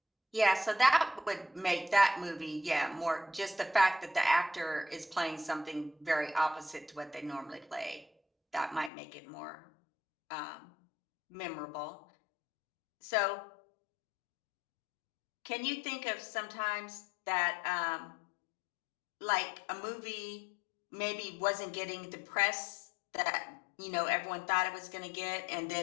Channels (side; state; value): right; drops out; at 8.9 s